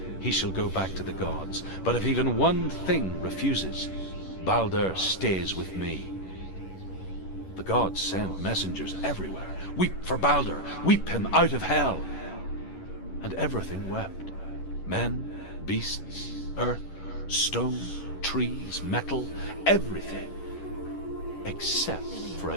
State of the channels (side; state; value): right; late; 11 ms